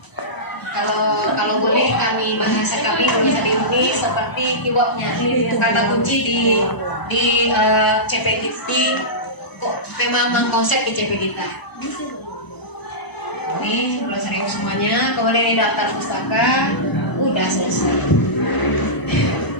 Kalau boleh bahasa kami bisa diundi seperti keywordnya kata kunci di CP kita kok memang konsep di CP kita. Ini 11.000 semuanya, kemudian ini daftar pustaka udah selesai.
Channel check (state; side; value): late; right; 1.0 ms